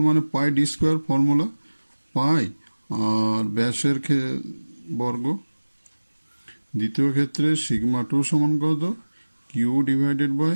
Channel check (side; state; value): both; inverted; correlation -1.00